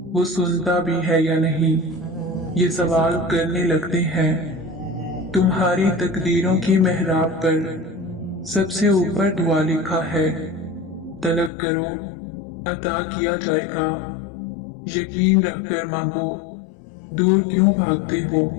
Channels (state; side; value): drops out; right; at 11.5 s